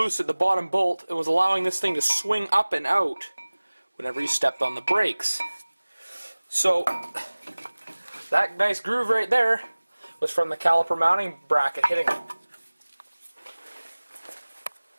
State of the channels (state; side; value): inverted; both; correlation -1.00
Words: at the bottom bolt and was allowing this thing to swing up and out whenever you stepped on the brakes. So that nice groove right there was from the caliper mounting bracket hitting it.